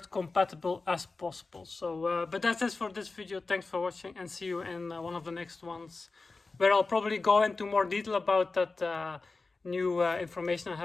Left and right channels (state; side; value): quieter; right; 3.8 dB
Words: compatible as possible. So but that's it for this video. Thanks for watching, and see you in one of the next ones, where I'll probably go into more detail about that new information I